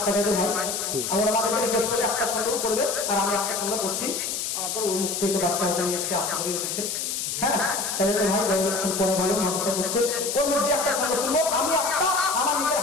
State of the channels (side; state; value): left; noise; hiss, 2 dB below the sound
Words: চাচাদের ভাই। আমার আমাদেরকে রিকোয়েস্ট করে একটা ছন্দ করবে, আর আমি একটা ছন্দ করছি। আমার পর ওর মুখ থেকে বাচ্চা হতে নিয়ে এসেছে, আশা করি এসেছে। হ্যাঁ, চাচাদের ভাই পরে ভালো মাংসা করছে, ওর মধ্যে একটা ছন্দ শুনবো। আমি একটা আমার নিজের